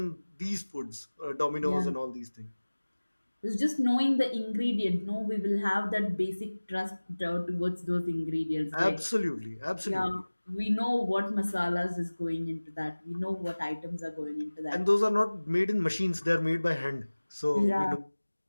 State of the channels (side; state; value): both; inverted; correlation -1.00